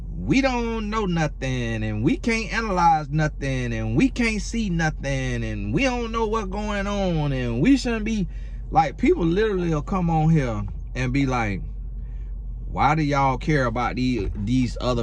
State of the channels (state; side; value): identical; both; correlation 1.00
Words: we don't know nothing, and we can't analyze nothing, and we can't see nothing, and we don't know what's going on, and we shouldn't be like, people literally will come on here and be like, why do y'all care about these